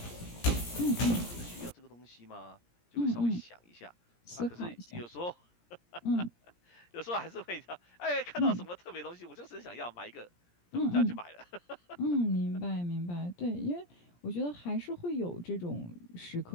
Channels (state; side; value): late; right; 17 ms